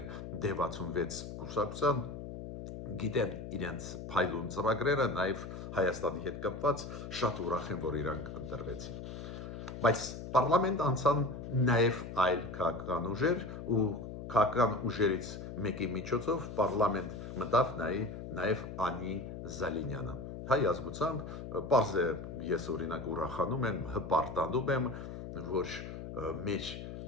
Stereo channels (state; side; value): noise; left; hum, 9 dB below the sound